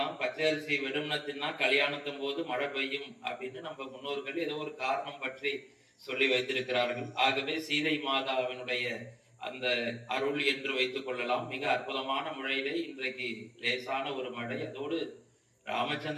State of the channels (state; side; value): identical; both; correlation 1.00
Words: பச்சரிசி வெறுமனத்தின்னா கல்யாணத்தின் போது மழை பெய்யும் அப்படின்னு நம்ம முன்னோர்கள் ஏதோ ஒரு காரணம் பற்றி சொல்லி வைத்திருக்கிறார்கள். ஆகவே சீதை மாதாவினுடைய அந்த அருள் என்று வைத்துக் கொள்ளலாம். மிக அற்புதமான முறையிலே இன்றைக்கு லேசான ஒரு மழை. அதோடு